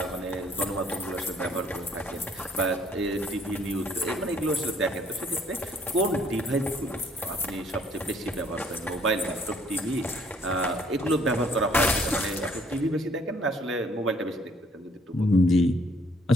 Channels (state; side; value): normal; both; correlation 0.62